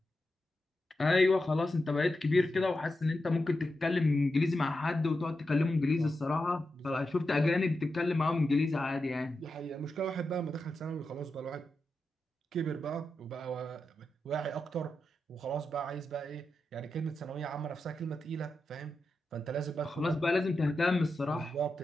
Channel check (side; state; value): both; normal; correlation 0.89